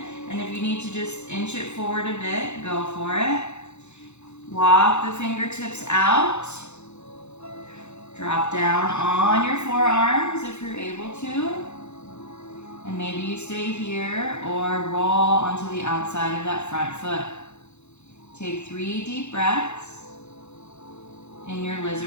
and if you need to just inch it forward a bit, go for it. Walk the fingertips out. Drop down on your forearms if you're able to. And maybe you stay here or roll onto the outside of that front foot. Take 3 deep breaths in your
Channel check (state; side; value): late; right; 0.82 ms